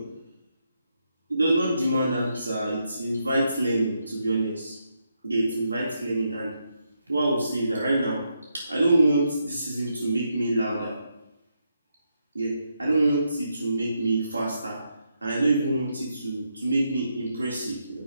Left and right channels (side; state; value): both; inverted; correlation -0.81